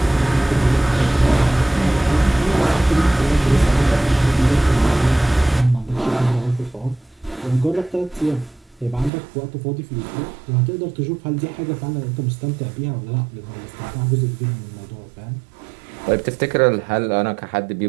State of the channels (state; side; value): drops out; left; at 9.1 s